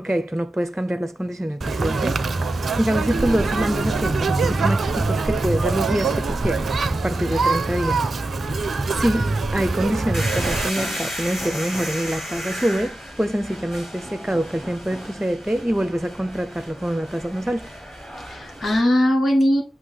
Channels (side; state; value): both; normal; correlation 0.92